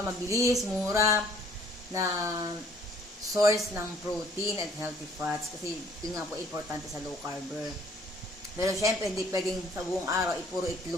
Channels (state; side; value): normal; both; correlation 0.59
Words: Mabilis, mura, na source ng protein at healthy fats. Kasi, yun nga po importante sa low carber. Pero syempre, hindi pwedeng sa buong araw, puro